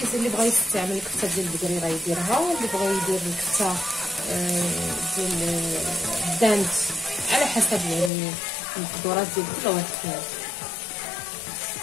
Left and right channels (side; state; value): right; drops out; at 8.1 s